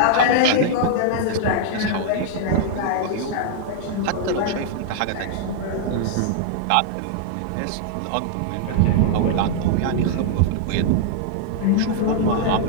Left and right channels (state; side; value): different; both; correlation -0.01